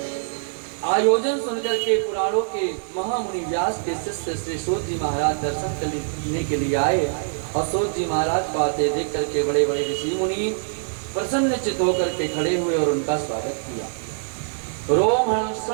आयोजन सुनकर के पुराणों के महामुनि व्यास के शिष्य श्री सूत जी महाराज दर्शन करने के लिए आए। और सूत जी महाराज को आते देख करके बड़े बड़े ऋषि मुनि प्रसन्नचित्त होकर के खड़े हुए और उनका स्वागत किया। रोम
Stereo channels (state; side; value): silent; left; 63 dB below the other